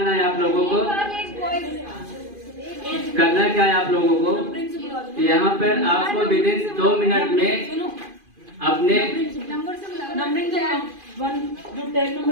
है आप लोगों को। करना क्या है आप लोगों को, यहाँ पर आपको विदिन 2 मिनट में अपने,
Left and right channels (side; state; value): left; late; 2.5 ms